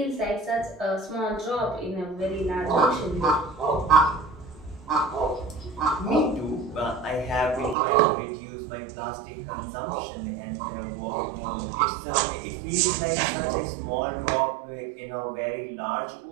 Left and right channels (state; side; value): drops out; left; at 7.8 s